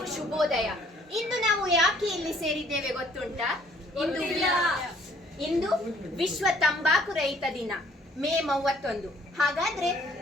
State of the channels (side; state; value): both; normal; correlation 0.60